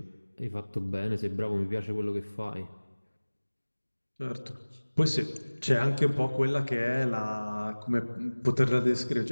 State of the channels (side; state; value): both; inverted; correlation -1.00